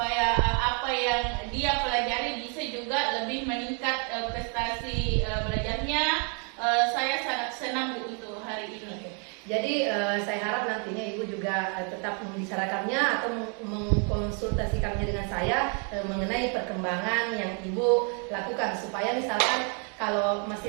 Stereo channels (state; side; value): quieter; left; 38.7 dB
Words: apa yang dia pelajari bisa juga lebih meningkat prestasi belajarnya. Saya sangat senang, Bu, untuk hari ini. Jadi saya harap nantinya Ibu juga tetap membicarakannya atau mengkonsultasikannya dengan saya mengenai perkembangan yang Ibu lakukan supaya misalkan kalau masih